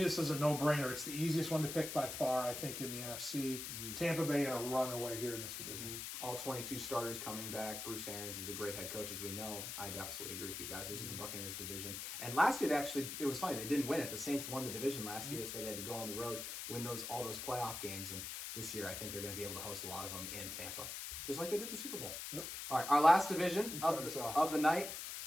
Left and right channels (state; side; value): noise; left; hiss, 6 dB below the sound